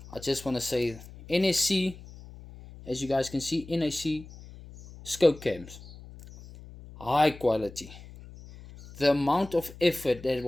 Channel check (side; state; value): left; noise; hum, 18 dB below the sound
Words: I just want to say NSC, as you guys can see, NSC scope cams, high quality. The amount of effort that